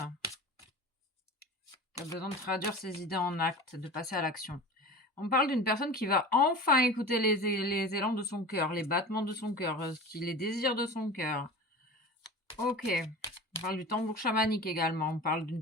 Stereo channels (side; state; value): both; normal; correlation 0.35